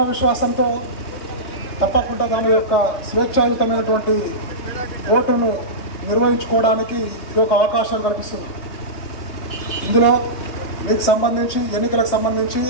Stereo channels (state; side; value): late; right; 3.2 ms